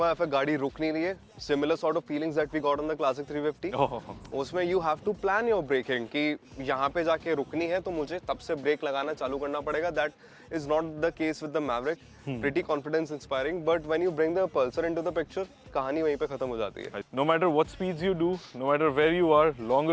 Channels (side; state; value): both; identical; correlation 1.00